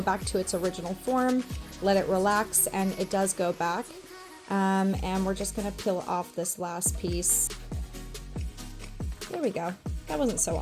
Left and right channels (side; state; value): both; identical; correlation 1.00